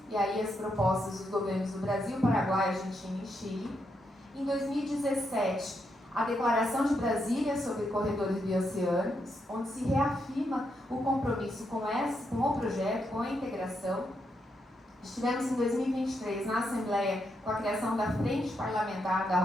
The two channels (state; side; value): normal; both; correlation 0.81